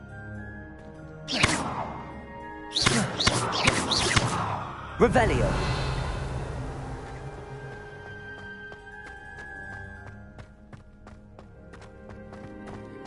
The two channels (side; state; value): both; identical; correlation 1.00